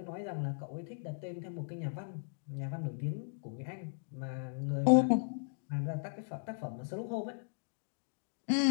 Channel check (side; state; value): right; silent; digital silence